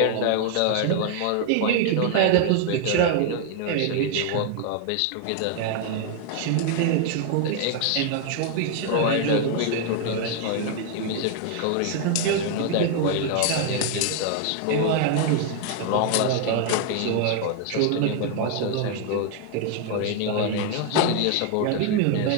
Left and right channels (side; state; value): both; different; correlation 0.00